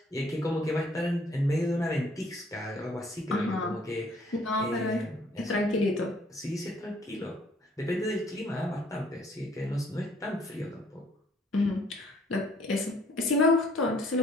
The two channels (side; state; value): both; normal; correlation 0.61